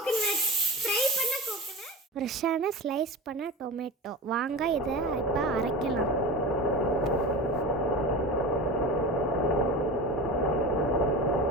ஃப்ரை பண்ண கோகனட், ஃப்ரெஷ்ஷான ஸ்லைஸ் பண்ண டொமேட்டோ. வாங்க இதை இப்போ அரைக்கலாம்.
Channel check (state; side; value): normal; both; correlation 0.30